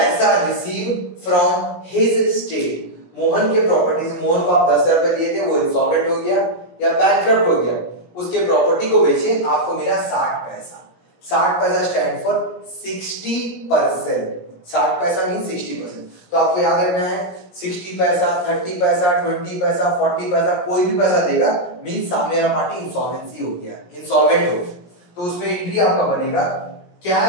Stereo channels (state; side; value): late; right; 17 ms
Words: receive from his state, Mohan के प्रॉपर्टी से, मोहन को आप 10,000 रुपए दिए थे, वो इंसॉल्वेंट हो गया या बैंकरप्ट हो गया, उसके प्रॉपर्टी को बेचिए, आपको मिला 60 पैसा। 60 पैसा स्टैंड फॉर 60%, 60 पैसा मीन 60%, तो आपको याद रखना है 60 पैसा, 30 पैसा, 20 पैसा, 40 पैसा, कोई भी पैसा देगा मीन सामने वाला पार्टी इंसॉल्वेंसी हो गया, इंसॉल्वेंट हो गया, तो उसमें एंट्री आपका बनेगा